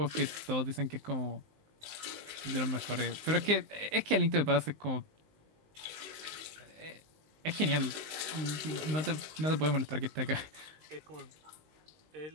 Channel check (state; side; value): late; left; 19 ms